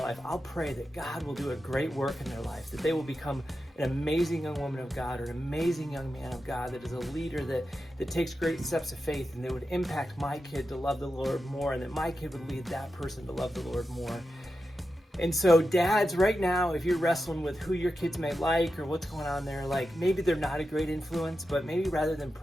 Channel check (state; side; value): normal; both; correlation 0.90